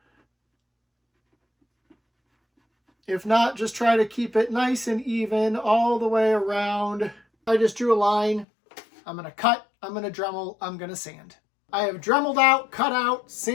If not, just try to keep it nice and even all the way around. I just drew a line. I'm going to cut, I'm going to Dremel, I'm going to sand. I have Dremeled out, cut out,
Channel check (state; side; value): drops out; right; at 8.5 s